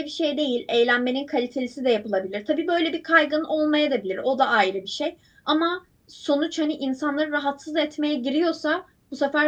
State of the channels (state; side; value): identical; both; correlation 1.00